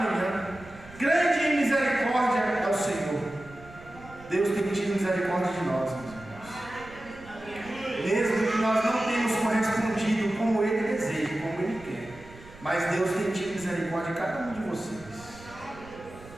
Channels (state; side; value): noise; right; rumble, 20 dB below the sound